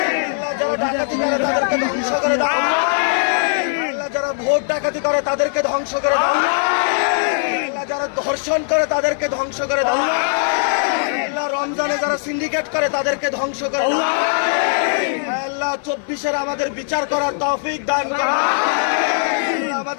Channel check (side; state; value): right; silent; 56 dB below the other